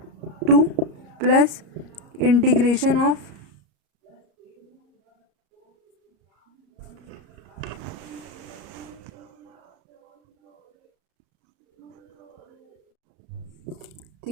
2 plus integration of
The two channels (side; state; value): left; late; 34 ms